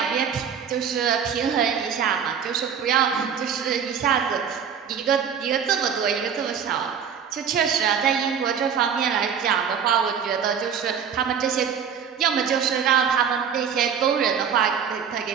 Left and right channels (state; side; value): quieter; left; 7.5 dB